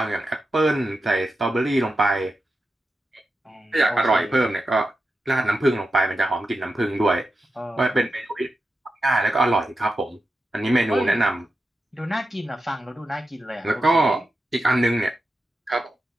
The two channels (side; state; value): both; normal; correlation 0.90